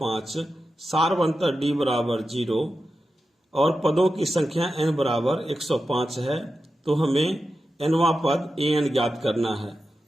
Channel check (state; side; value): normal; both; correlation 0.91